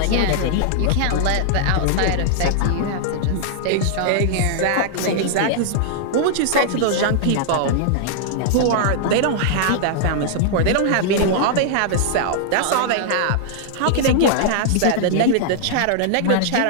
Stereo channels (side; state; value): both; different; correlation -0.01